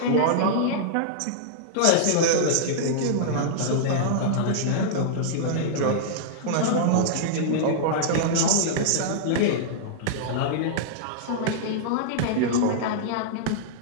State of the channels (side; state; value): both; different; correlation -0.02